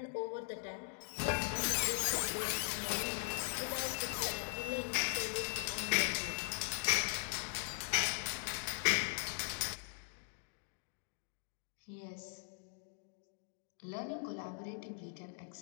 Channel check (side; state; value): right; silent; digital silence